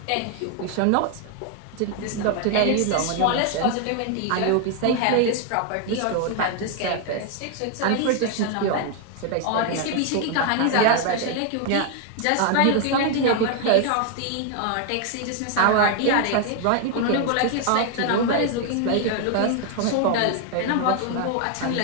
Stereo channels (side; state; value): both; different; correlation 0.00